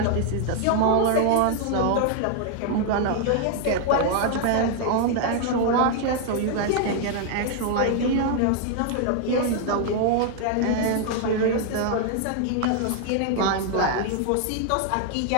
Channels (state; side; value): different; both; correlation 0.00